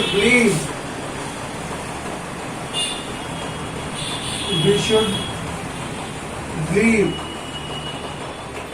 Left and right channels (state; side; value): identical; both; correlation 1.00